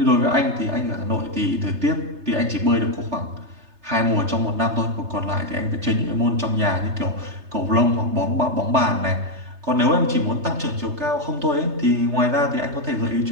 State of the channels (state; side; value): late; left; 3.3 ms